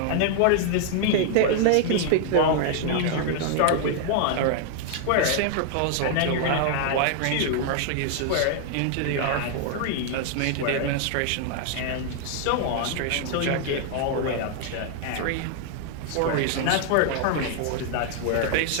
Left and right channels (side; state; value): both; different; correlation 0.00